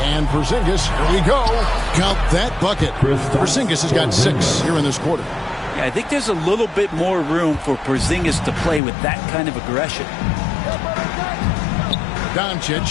And Porzingis, here we go. Count that bucket. Porzingis has got 6 here in this quarter. Yeah, I think there's a little bit more room for Porzingis to play with that kind of aggression.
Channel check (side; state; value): right; drops out; at 8.8 s